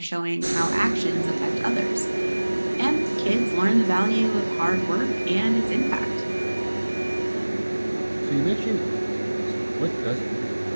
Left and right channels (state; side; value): inverted; both; correlation -1.00